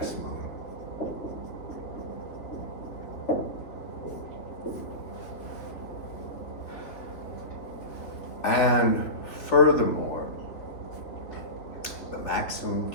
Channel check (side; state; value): right; late; 3.1 ms